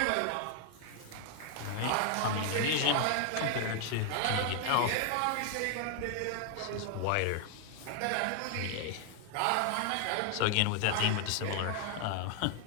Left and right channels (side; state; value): both; different; correlation 0.00